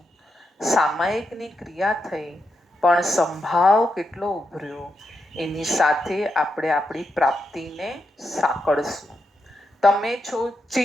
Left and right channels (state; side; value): normal; both; correlation 0.84